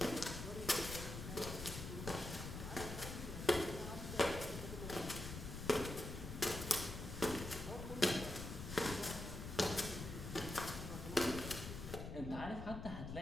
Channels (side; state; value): left; noise; rumble, 7 dB below the sound